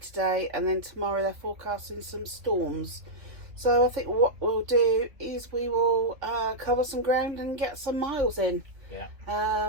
And then tomorrow they're forecasting some storms. So I think what we'll do is we will cover some ground and get some miles in. Yeah.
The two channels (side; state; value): left; late; 3.2 ms